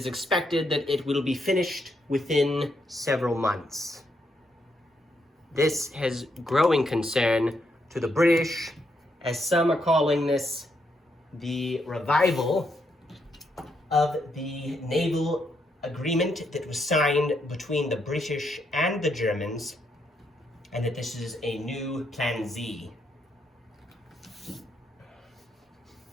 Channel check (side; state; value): both; normal; correlation 0.78